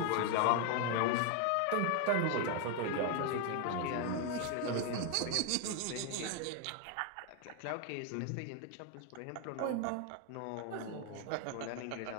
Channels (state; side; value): different; both; correlation 0.01